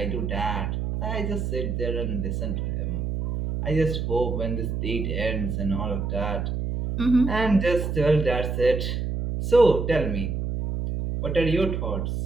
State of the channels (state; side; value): noise; right; hum, 2 dB below the sound